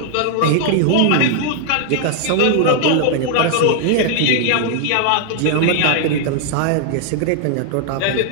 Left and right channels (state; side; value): different; both; correlation 0.00